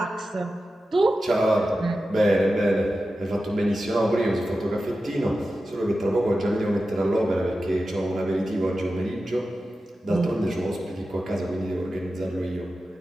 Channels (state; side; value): normal; both; correlation 0.93